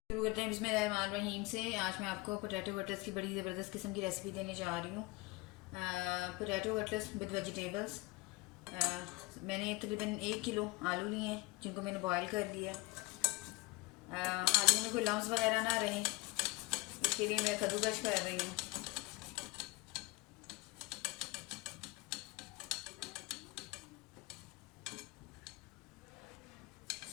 करते हैं बिस्मिल्लाहिर्रहमानिर्रहीम से। आज मैं आपको पोटैटो कटलेट्स की बड़ी ज़बरदस्त किस्म की रेसिपी देने जा रही हूँ। Potato cutlets with vegetables. मैंने तकरीबन 1 किलो आलू लिए हैं जिनको मैंने बॉयल कर लिया। आलू में कोई लम्स वगैरह ना रहे, इसके लिए मैं कद्दूकस कर रही हूँ।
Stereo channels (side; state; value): right; quieter; 23.2 dB